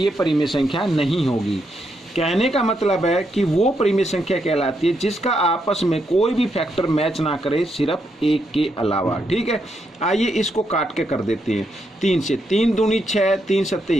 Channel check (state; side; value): normal; both; correlation 0.80